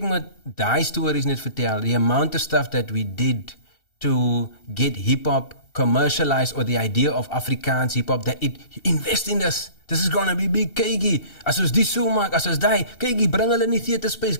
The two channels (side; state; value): right; late; 2.7 ms